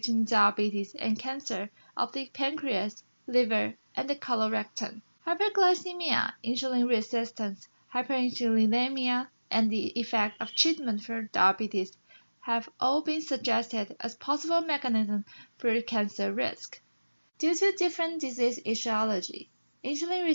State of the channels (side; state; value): both; inverted; correlation -1.00